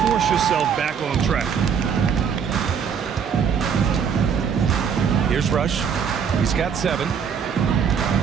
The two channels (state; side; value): quieter; left; 7.1 dB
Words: force yourself back on track. Here's Rush. He's got 7.